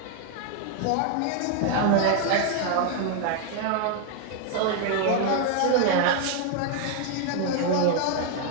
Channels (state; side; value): different; both; correlation 0.00